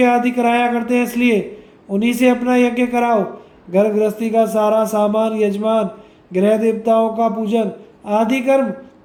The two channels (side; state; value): both; identical; correlation 1.00